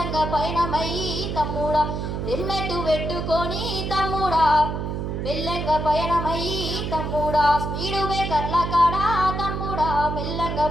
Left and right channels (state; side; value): noise; right; hum, 3 dB below the sound